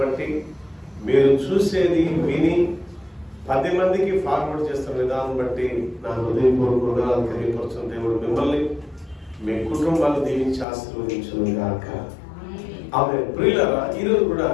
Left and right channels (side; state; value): right; drops out; at 10.7 s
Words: బట్టి మీరు చూసేది విని 10 మందికి ఫార్వర్డ్ చేస్తున్న విధానం బట్టి నా హృదయపూర్వకంగా తెలియపరుచున్న దేవుడు మిమ్మల్ని మీ కుటుంబాలు దీవించి ఆశీర్వదించును గాక. ఆమె ప్రియులారా, ఈరోజు కూడా